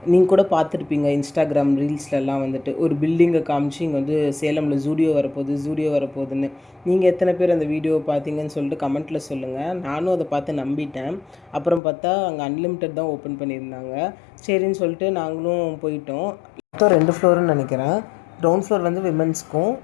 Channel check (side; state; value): right; drops out; at 11.8 s